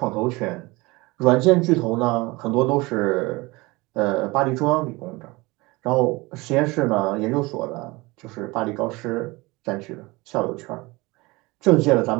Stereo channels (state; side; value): quieter; left; 23.0 dB